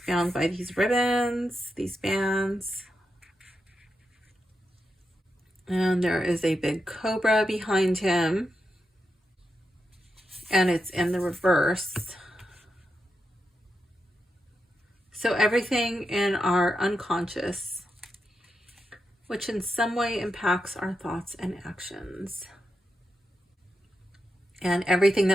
bound by these ribbons, these bands. And there is a big cobra behind him. And it's in the reverse. So everything in our unconscious, which in some way impacts our thoughts and actions. And everything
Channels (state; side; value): normal; both; correlation 0.87